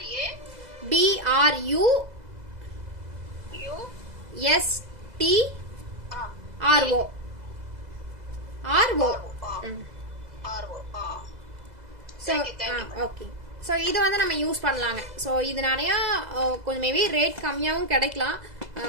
ஓகே. ஸோ இது வந்து நம்ம யூஸ் பண்ணலாங்க. ஸோ இது நிறைய கொஞ்சம் மேபி ரேட் கம்மியாகவும் கிடைக்கலாம்,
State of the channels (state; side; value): late; left; 2.0 ms